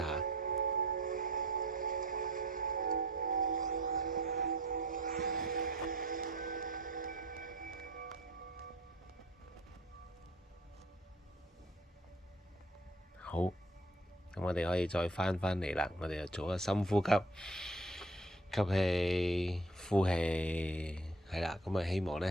好，咁我哋可以再返嚟啦。我哋就做個深呼吸，吸氣、呼氣，係啦。咁啊，希望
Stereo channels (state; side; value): normal; both; correlation 0.50